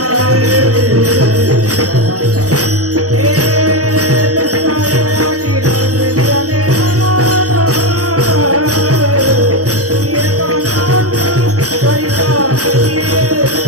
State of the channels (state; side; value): late; left; 0.66 ms